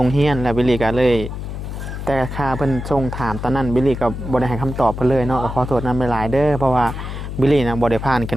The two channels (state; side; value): noise; left; hum, 7 dB below the sound